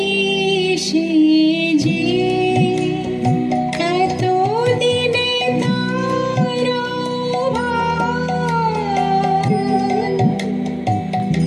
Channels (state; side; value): identical; both; correlation 1.00